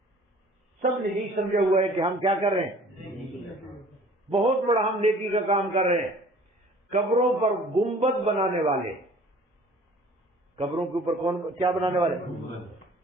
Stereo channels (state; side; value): normal; both; correlation 0.50